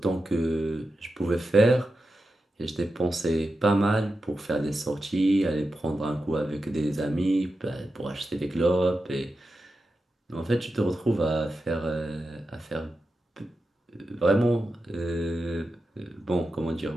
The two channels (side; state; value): both; normal; correlation 0.90